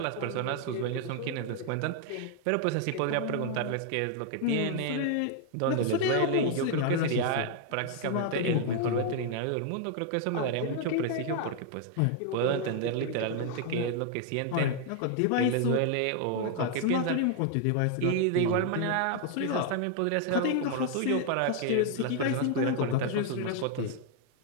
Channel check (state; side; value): different; both; correlation 0.00